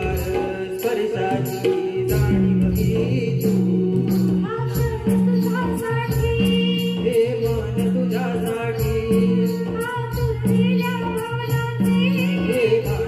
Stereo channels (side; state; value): both; identical; correlation 1.00